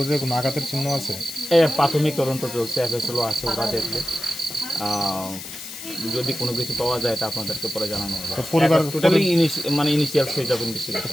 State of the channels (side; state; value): left; noise; hiss, 11 dB below the sound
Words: কোনো আঘাতের চিহ্ন আছে? প্রাথমিক তদন্ত চলছে, এফএসএলও আছে, ওরা দেখবে। যদি কোনো কিছু পাওয়া যায় এটা আপনাদেরকে পরে জানানো হবে। পরিবার totally initial stage of investigation.